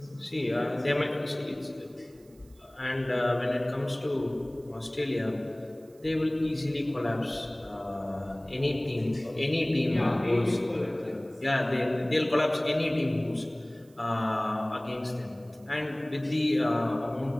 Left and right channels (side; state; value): right; noise; hiss, 30 dB below the sound